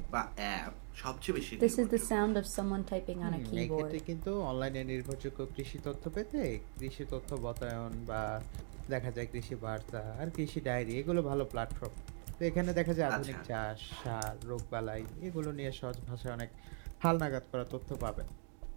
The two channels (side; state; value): left; silent; 51 dB below the other